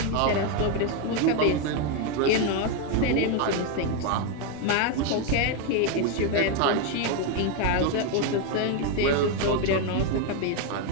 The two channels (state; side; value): different; both; correlation 0.02